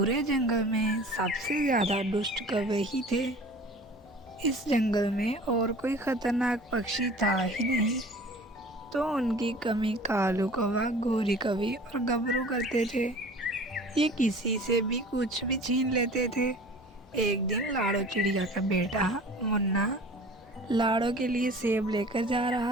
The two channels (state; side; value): normal; both; correlation 0.43